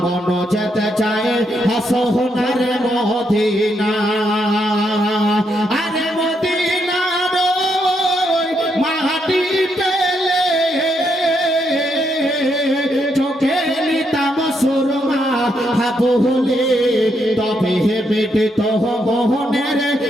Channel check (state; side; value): normal; both; correlation 0.78